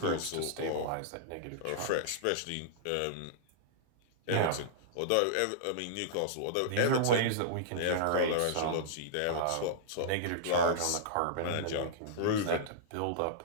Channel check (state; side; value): different; both; correlation -0.02